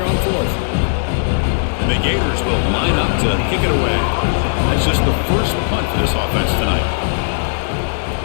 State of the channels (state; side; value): silent; right; 55 dB below the other